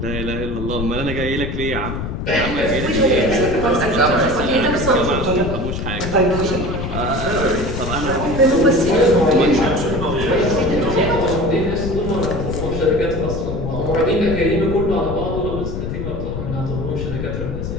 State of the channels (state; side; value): noise; left; rumble, 4 dB below the sound